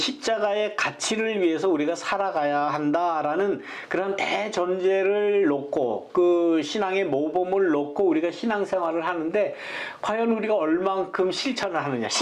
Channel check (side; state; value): both; identical; correlation 1.00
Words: 가치를 위해서 우리가 살아가야 한다라는 그런 대전제를 놓고 그 신앙의 모범을 놓고 우리가 신앙생활을 하는데 과연 우리가 얼만큼 실천을 하느냐